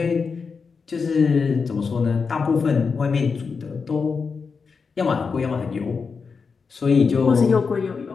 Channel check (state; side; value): quieter; right; 5.2 dB